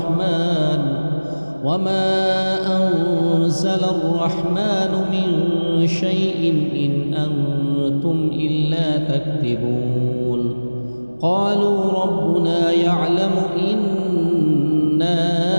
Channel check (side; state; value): both; inverted; correlation -1.00